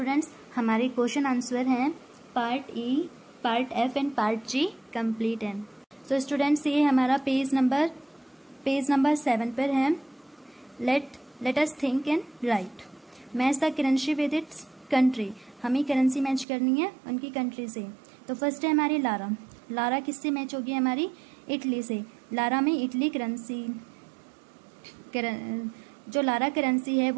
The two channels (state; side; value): drops out; left; at 16.4 s